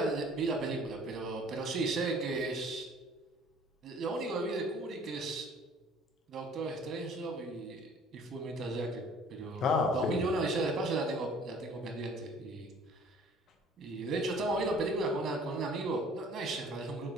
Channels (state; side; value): normal; both; correlation 0.52